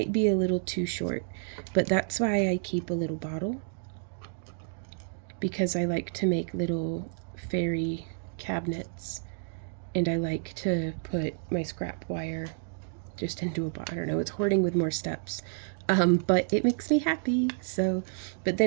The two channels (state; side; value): silent; left; digital silence